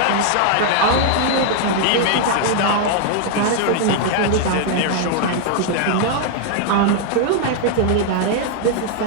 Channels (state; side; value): different; both; correlation 0.00